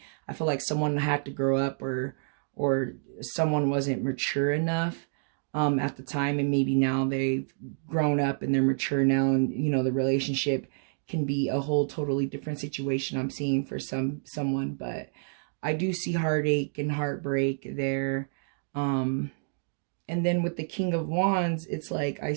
I feel like someone had to grow up or someone wasn't mature enough at the time. And maybe now they've grown up and they're mature now. And, you know, the relationship can be a whole totally different situation I'm seeing for someone. But I do see heartache and heartbreak there. And then with the King of Wands, it's like I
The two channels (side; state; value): left; silent; digital silence